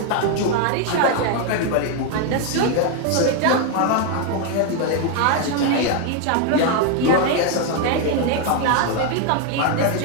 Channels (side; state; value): both; different; correlation 0.01